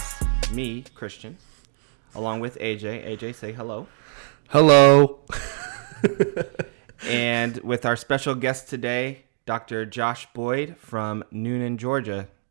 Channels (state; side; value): silent; left; 63 dB below the other